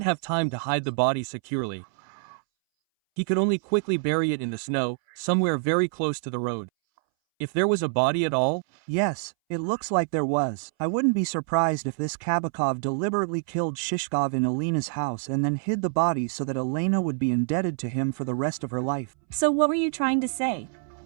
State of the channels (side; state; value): left; silent; 61 dB below the other